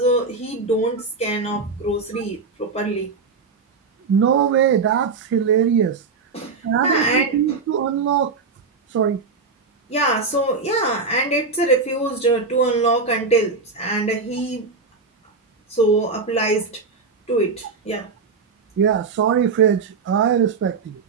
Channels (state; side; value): quieter; left; 4.5 dB